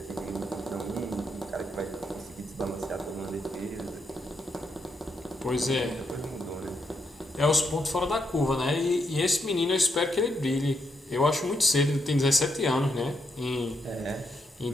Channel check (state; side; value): normal; both; correlation 0.79